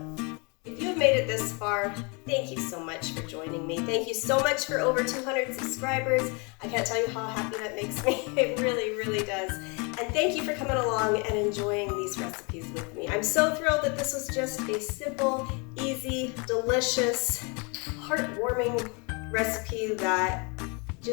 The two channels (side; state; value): right; quieter; 31.9 dB